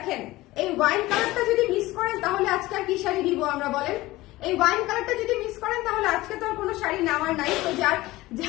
এই ওয়াইন কালারটা যদি মিস করেন তাহলে আজকে আর কি শাড়ি দিব আমরা বলেন? এই ওয়াইন কালারটা যদি মিস করেন তাহলে আজকে তো আর কোনো শাড়ি নেওয়ার নাই। তো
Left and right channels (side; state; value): right; quieter; 18.5 dB